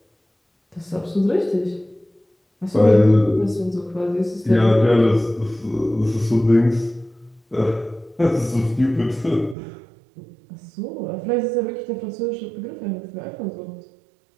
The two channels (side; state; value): left; drops out; at 9.6 s